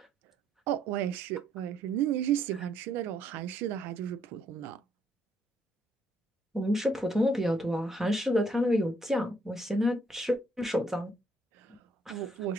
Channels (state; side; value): normal; both; correlation 0.70